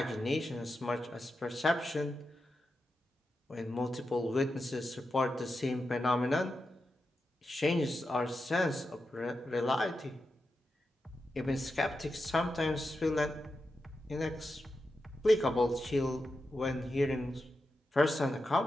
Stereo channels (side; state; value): both; normal; correlation 0.89